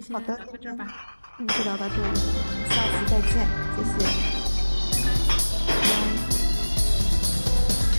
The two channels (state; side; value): inverted; both; correlation -1.00